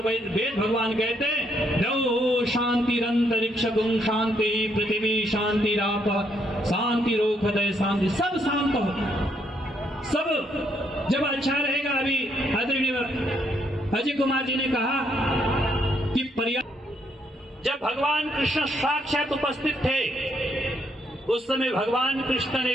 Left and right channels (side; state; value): both; normal; correlation 0.73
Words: वेद भगवान कहते हैं, द्यौः शांतिरंतरिक्षं शांति पृथ्वी शांतिराप शांति रोखदय शांति। सब शांत हो, सब जब अच्छा रहेगा। अभी आदरणीय अजय कुमार जी ने कहा कि जब भगवान कृष्ण साक्षात उपस्थित थे, उस समय भगवान कृष्ण